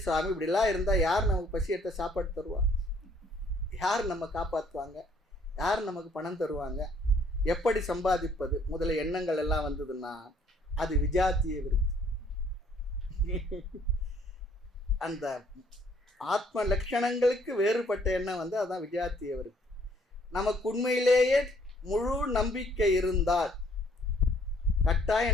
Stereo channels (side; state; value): both; normal; correlation 0.63